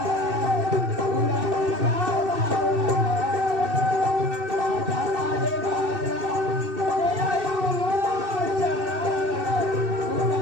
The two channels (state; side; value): late; left; 2.6 ms